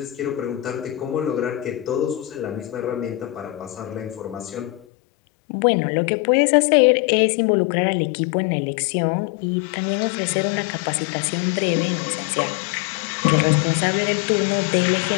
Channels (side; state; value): right; drops out; at 4.9 s